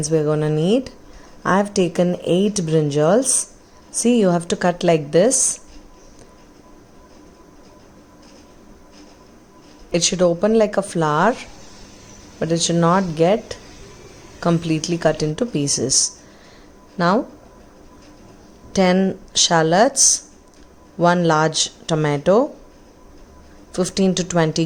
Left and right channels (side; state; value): both; identical; correlation 1.00